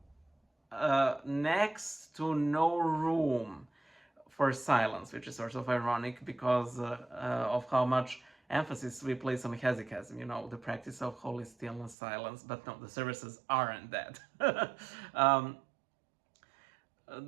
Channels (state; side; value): drops out; left; at 12.0 s